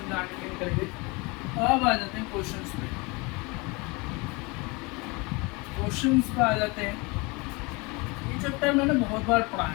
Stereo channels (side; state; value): right; quieter; 27.1 dB